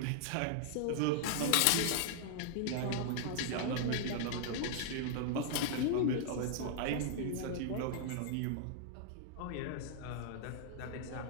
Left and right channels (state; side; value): different; both; correlation -0.01